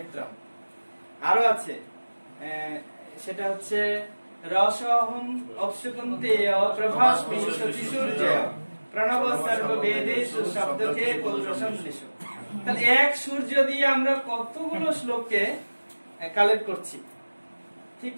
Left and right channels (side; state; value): both; inverted; correlation -1.00